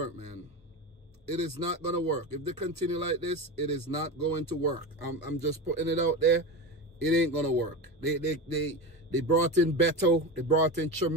man. It is not going to work. If they continue like this, it is not going to work. I'm just putting it out there. It ain't going to work. They brought in Beto. They brought in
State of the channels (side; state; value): both; normal; correlation 0.24